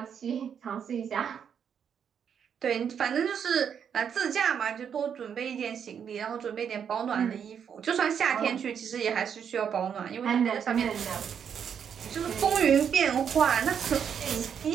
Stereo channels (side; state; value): left; quieter; 7.8 dB